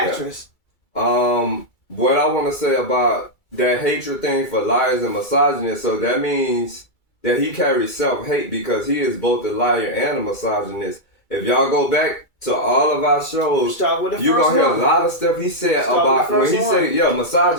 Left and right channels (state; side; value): late; right; 2.3 ms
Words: What I want to say about that hatred thing for liars and misogynists, so that means that he carries self-hate because he is both a liar and a misogynist. If y'all go back to all of our shows, you're going to hear a lot of stuff he said about, when he said,